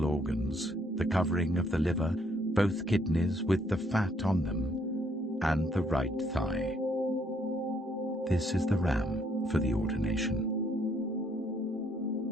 organs, the covering of the liver, both kidneys with the fat on them, and the right thigh. This is the ram for the ordination.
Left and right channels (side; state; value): both; normal; correlation 0.69